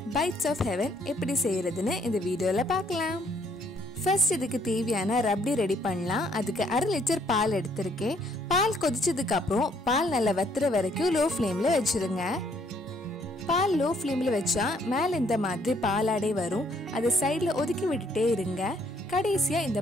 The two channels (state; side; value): normal; both; correlation 0.66